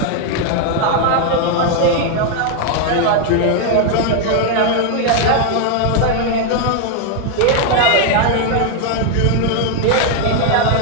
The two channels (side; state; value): both; different; correlation 0.00